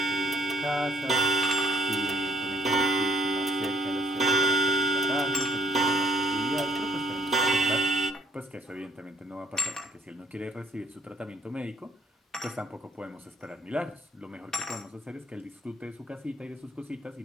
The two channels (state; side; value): normal; both; correlation 0.65